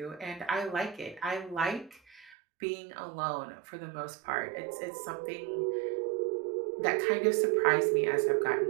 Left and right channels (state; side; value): drops out; left; at 2.4 s